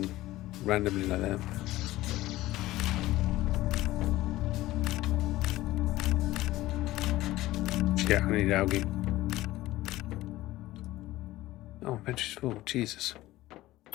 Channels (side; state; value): right; quieter; 16.8 dB